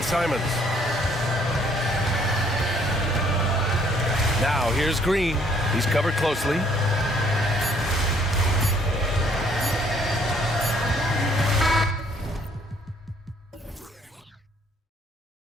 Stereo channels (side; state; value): both; normal; correlation 0.63